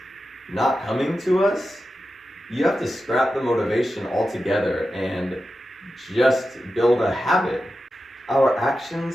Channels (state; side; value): normal; both; correlation 0.91